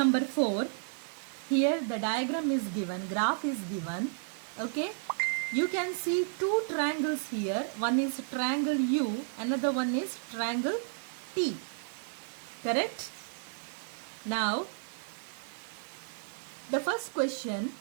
4. Here the diagram is given, graph is given. Okay. You can see two triangles here. One is triangle U, another one is triangle T. Correct? Now, the first question,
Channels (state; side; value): silent; left; digital silence